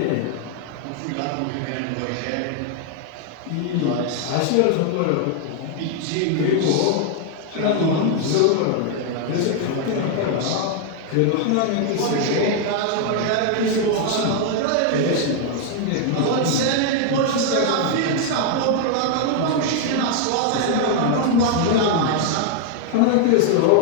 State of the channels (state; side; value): different; both; correlation 0.00